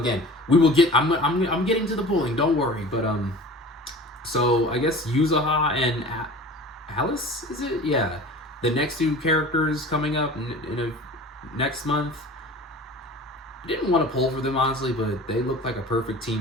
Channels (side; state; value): both; normal; correlation 0.40